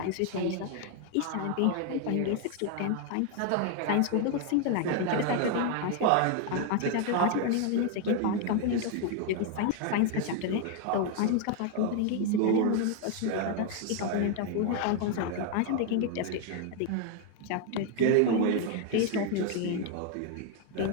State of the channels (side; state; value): both; different; correlation 0.01